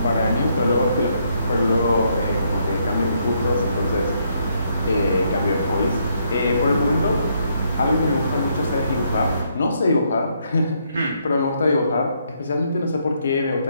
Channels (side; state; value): both; inverted; correlation -0.73